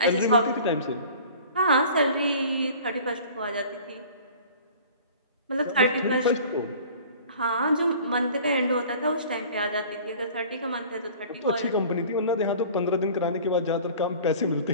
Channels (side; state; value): both; inverted; correlation -0.45